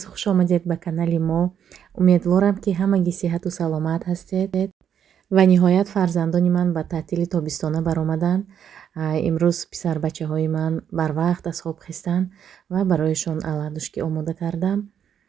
хуш омадед ба канали мо. Умедворам ки ҳамагӣ сиҳату саломат ҳастед ва ниҳоят фарзандони ман ба таътили тобистона баромаданд. Имрӯз писарбачаҳои ман барвақт аз хоб хистанд ва барояшон аладушкӣ омода кардам.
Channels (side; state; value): left; quieter; 8.7 dB